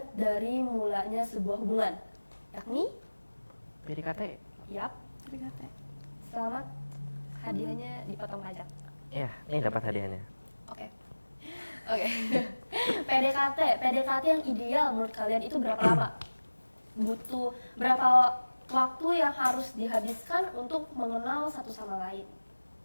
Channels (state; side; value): inverted; both; correlation -1.00